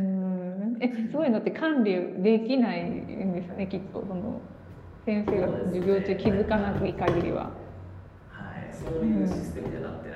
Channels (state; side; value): identical; both; correlation 1.00